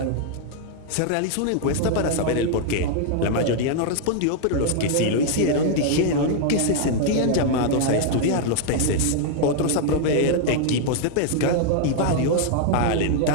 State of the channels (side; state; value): both; different; correlation 0.00